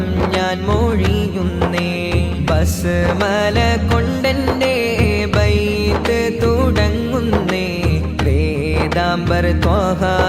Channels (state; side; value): identical; both; correlation 1.00